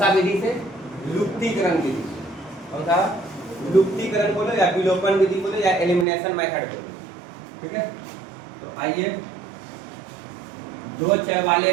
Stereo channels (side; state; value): left; drops out; at 6.1 s